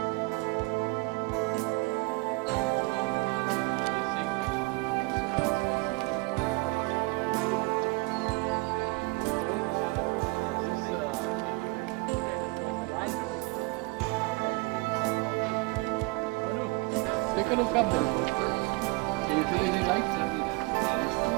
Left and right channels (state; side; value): quieter; left; 26.2 dB